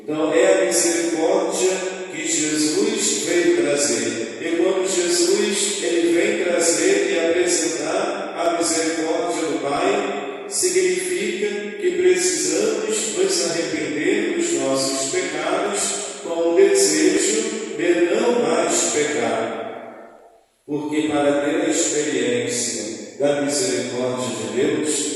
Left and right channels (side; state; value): both; identical; correlation 1.00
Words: Então é a misericórdia que Jesus veio trazer. E quando Jesus ele vem trazer e apresentar a misericórdia do Pai, significa que precisamos nos arrepender dos nossos pecados com o desejo de não mais pecar. Porque para ter a experiência da misericórdia de